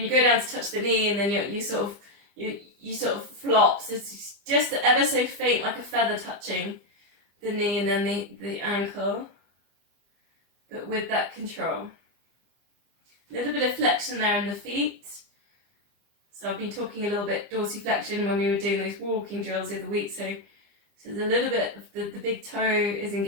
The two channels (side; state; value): left; late; 25 ms